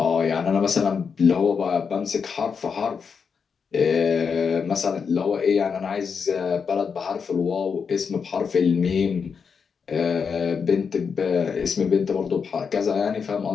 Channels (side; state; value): right; quieter; 6.0 dB